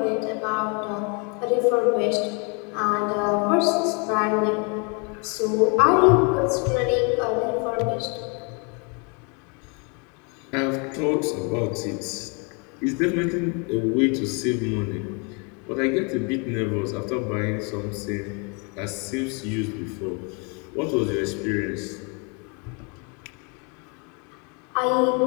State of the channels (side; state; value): right; quieter; 34.2 dB